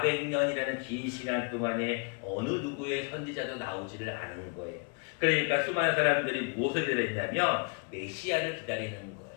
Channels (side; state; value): right; quieter; 34.7 dB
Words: 긴 시간 동안에 어느 누구의 선지자도 나오지를 않은 거예요. 그러니까 수많은 사람들이 무엇을 기다렸냐면 메시아를 기다리는 거예요.